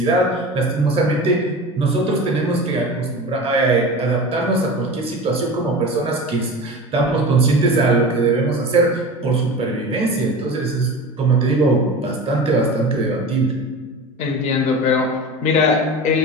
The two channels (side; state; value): both; normal; correlation 0.32